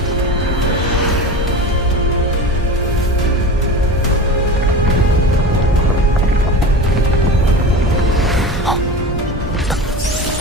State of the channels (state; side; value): normal; both; correlation 0.30